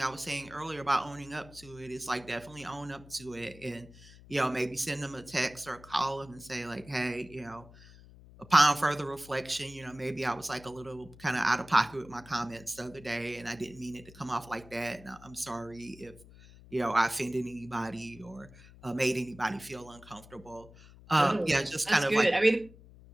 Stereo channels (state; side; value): noise; left; hum, 21 dB below the sound